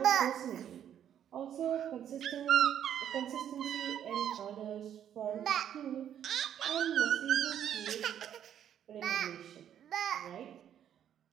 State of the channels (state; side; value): quieter; left; 9.8 dB